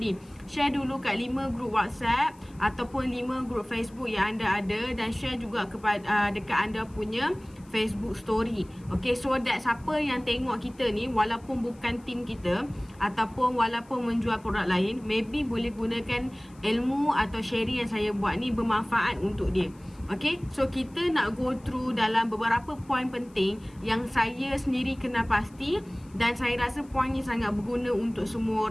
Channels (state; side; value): noise; left; hiss, 29 dB below the sound